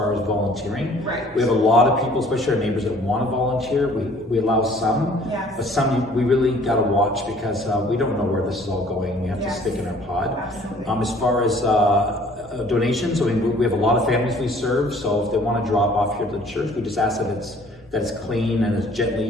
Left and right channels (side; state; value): both; normal; correlation 0.55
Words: as volunteering. Right. We have a lot of people, especially our neighbors, that want to volunteer. We allow some, but some we really got to watch because we don't know where this is all going. We have to stick in our pod. Absolutely. As far as donations, I mean, we have a lot of families we serve, so if they want to drop off here to the church, we just ask that it's clean and it's gently